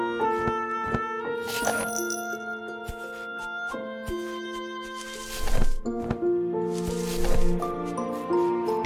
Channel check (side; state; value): both; identical; correlation 1.00